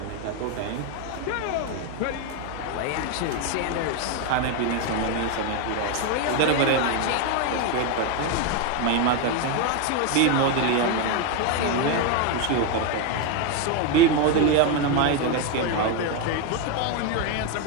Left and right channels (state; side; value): different; both; correlation 0.02